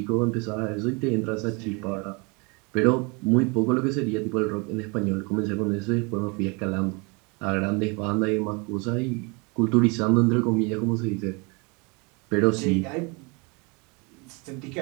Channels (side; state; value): left; quieter; 30.3 dB